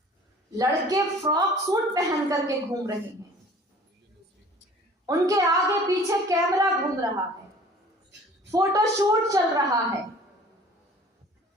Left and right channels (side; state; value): both; normal; correlation 0.48